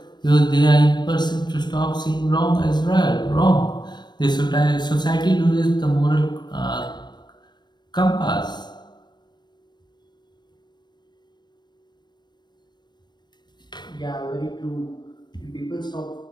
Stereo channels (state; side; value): late; right; 0.21 ms